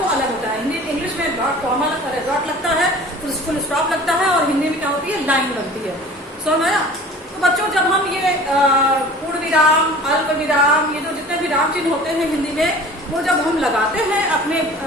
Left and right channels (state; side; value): normal; both; correlation 0.44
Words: अलग होता है। इंग्लिश में कॉमा डॉट लगता है, फुल स्टॉप लगता है, और हिंदी में क्या होती है, लाइन लगती है। समझ में आया। तो बच्चों जब हम ये पूर्ण विराम, अल्प विराम, ये जो जितने विराम चिन्ह होते हैं हिंदी में, वो जब हम लगाते हैं अपने